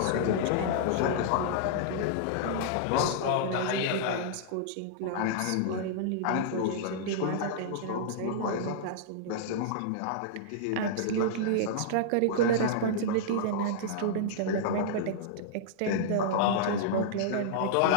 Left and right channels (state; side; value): different; both; correlation -0.02